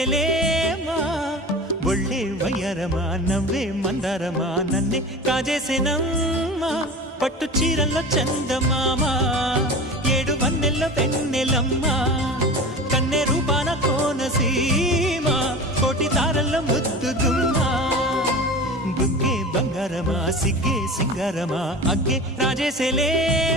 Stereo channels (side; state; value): both; normal; correlation 0.33